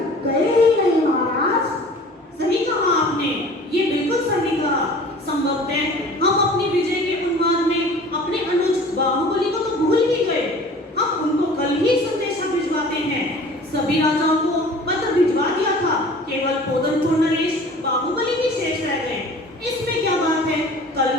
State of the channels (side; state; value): both; normal; correlation 0.45